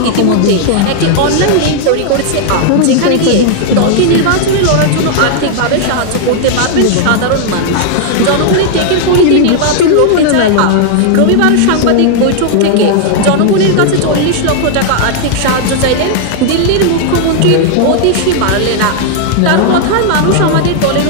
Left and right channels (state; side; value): different; both; correlation 0.00